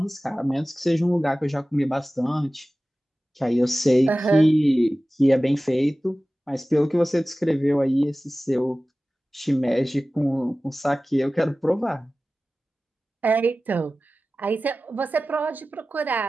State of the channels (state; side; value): normal; both; correlation 0.96